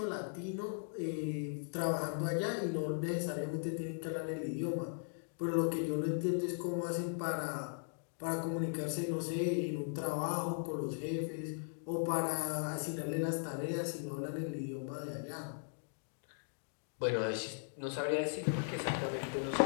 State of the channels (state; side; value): silent; right; digital silence